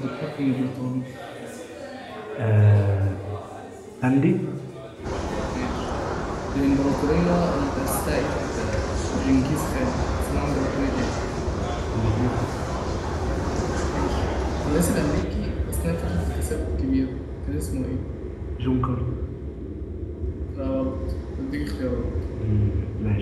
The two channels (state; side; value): identical; both; correlation 1.00